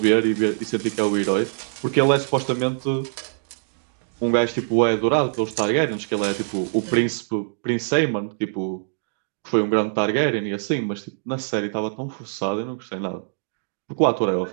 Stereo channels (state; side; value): silent; left; digital silence